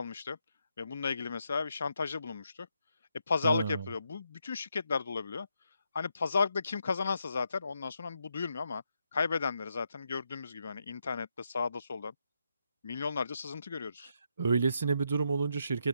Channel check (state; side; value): inverted; both; correlation -0.81